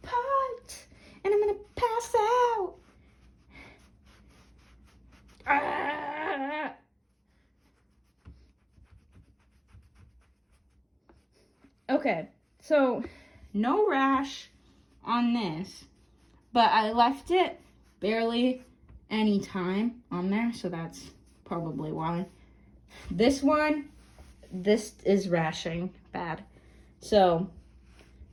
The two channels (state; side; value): identical; both; correlation 1.00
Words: POT, and I'm gonna pass out. Okay, so no rash on this, but I left it barely any time on there, so that's probably why. This one, this is rashing bad. So,